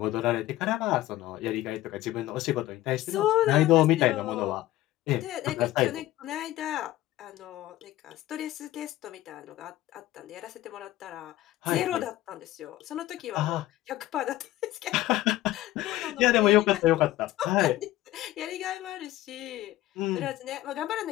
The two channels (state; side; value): quieter; right; 15.4 dB